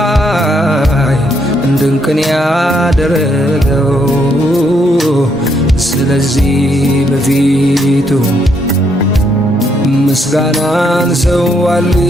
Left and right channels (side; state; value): both; normal; correlation 0.74